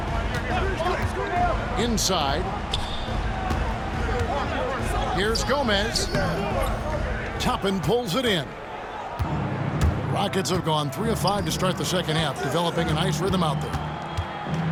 Inside. Here's Gomez. Toppin pulls it in. Rockets have gone 3 of 5 to start the second half, developing a nice rhythm out there.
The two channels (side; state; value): both; identical; correlation 1.00